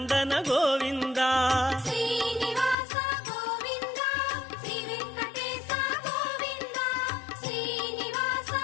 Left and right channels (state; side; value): drops out; right; at 2.8 s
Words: ಗೋವಿಂದ ಶ್ರೀನಿವಾಸ ಗೋವಿಂದ ಶ್ರೀ ವೆಂಕಟೇಶ ಗೋವಿಂದ ಶ್ರೀನಿವಾಸ